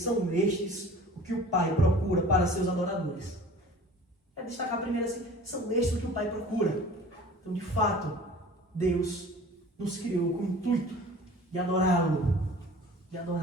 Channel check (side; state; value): both; normal; correlation 0.44